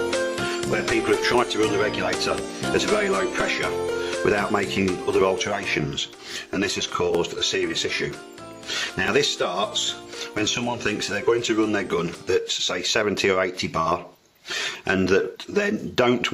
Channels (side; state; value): both; identical; correlation 1.00